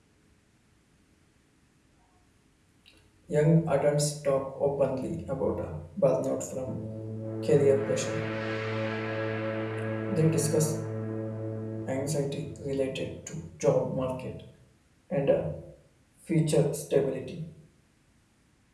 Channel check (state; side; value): identical; both; correlation 1.00